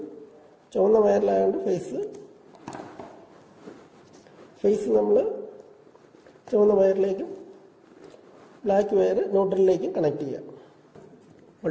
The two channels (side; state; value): both; identical; correlation 1.00